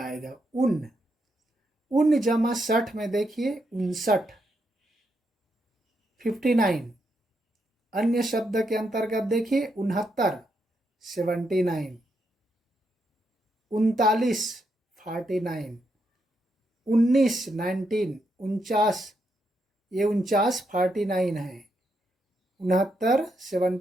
उन जमा 60 में देखिए 59, 59। अन्य शब्द के अंतर्गत देखिए 69, 79, 39, 49, 19, 19, 49, ये 49 49 है, 69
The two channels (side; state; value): both; normal; correlation 0.80